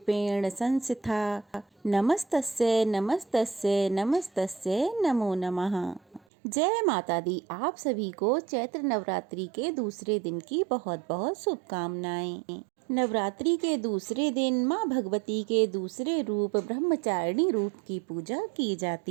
संस्थिता नमस्तस्यै नमस्तस्यै नमस्तस्यै नमो नमः। जय माता दी। आप सभी को चैत्र नवरात्रि के दूसरे दिन की बहुत बहुत शुभकामनाएं। नवरात्रि के दूसरे दिन माँ भगवती के दूसरे रूप ब्रह्मचारिणी रूप की पूजा की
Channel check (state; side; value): drops out; left; at 6.2 s